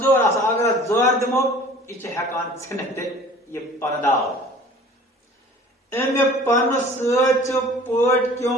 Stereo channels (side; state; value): both; normal; correlation 0.47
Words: آسان اگر اتھ زور دِمو یہِ چھِ ہٮ۪کان ژھٕنِتھ تہِ یہِ پنہٕ داو امہِ پنہٕ سۭتۍ چھُ پٲٹھۍ